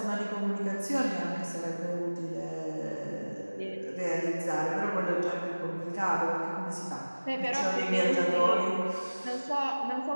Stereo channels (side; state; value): both; inverted; correlation -1.00